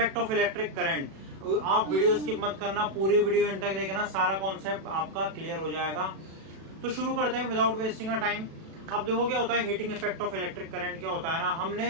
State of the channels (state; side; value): late; left; 37 ms